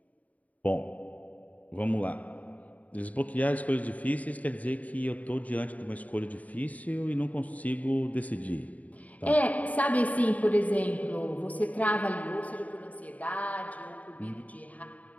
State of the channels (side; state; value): right; late; 0.072 ms